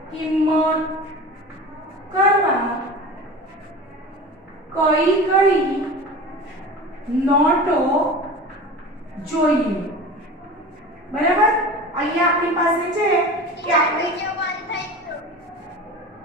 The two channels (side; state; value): both; normal; correlation 0.34